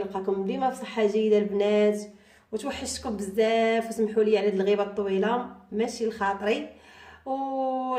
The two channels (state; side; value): identical; both; correlation 1.00